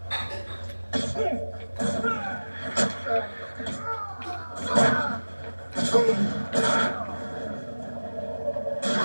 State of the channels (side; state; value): both; inverted; correlation -1.00